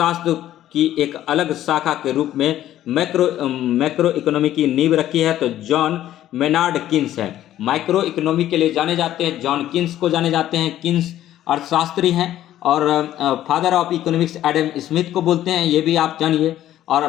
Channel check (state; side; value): quieter; right; 12.7 dB